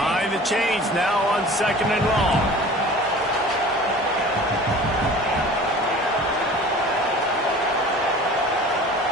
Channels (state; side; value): normal; both; correlation 0.42